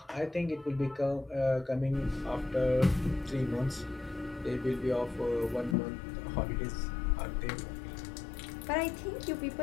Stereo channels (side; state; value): right; drops out; at 5.8 s